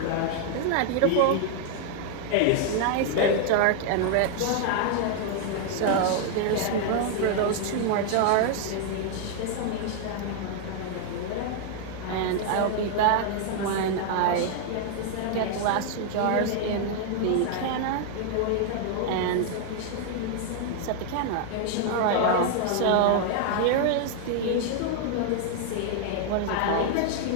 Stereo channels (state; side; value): different; both; correlation 0.00